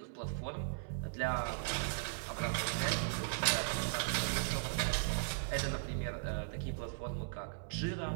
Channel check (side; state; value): left; silent; 53 dB below the other